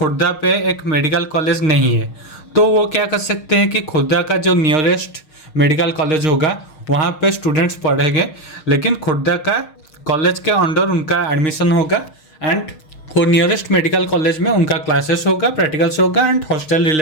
पे एक मेडिकल कॉलेज नहीं है, तो वो क्या कर सकते हैं कि खुर्दा का जो नियरेस्ट मेडिकल कॉलेज होगा वहाँ पे स्टूडेंट्स पढ़ेंगे, लेकिन खुर्दा का कॉलेज के अंडर उनका एडमिशन होगा, एंड वो नियरेस्ट मेडिकल कॉलेज में उनका क्लासेस होगा, प्रैक्टिकल्स होगा, एंड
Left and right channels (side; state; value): right; late; 6.5 ms